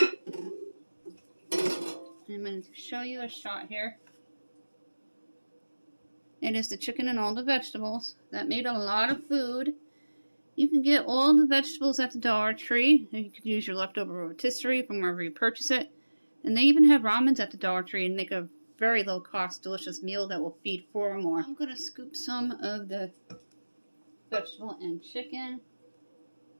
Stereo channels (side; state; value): both; inverted; correlation -1.00